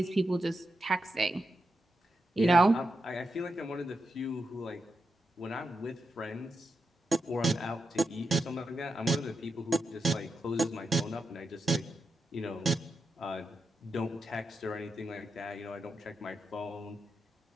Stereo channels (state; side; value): normal; both; correlation 0.86